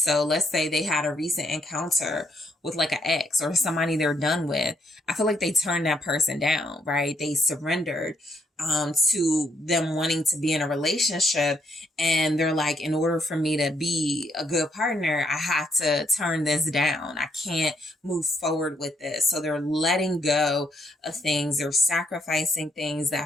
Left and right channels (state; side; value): normal; both; correlation 0.73